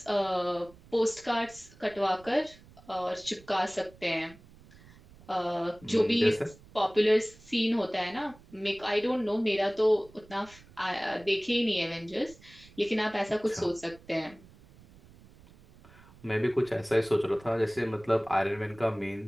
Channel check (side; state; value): right; noise; rumble, 24 dB below the sound